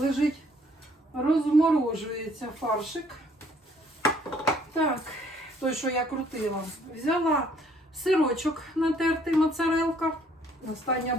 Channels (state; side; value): normal; both; correlation 0.63